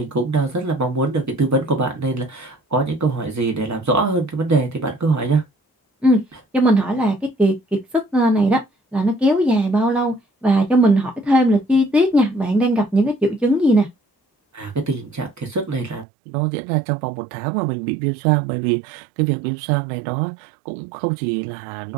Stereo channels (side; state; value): left; drops out; at 16.1 s